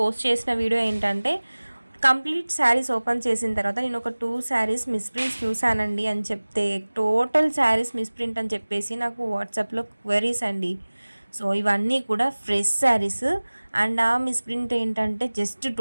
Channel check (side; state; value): both; inverted; correlation -1.00